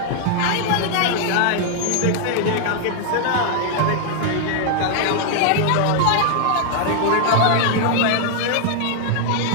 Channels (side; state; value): both; different; correlation 0.00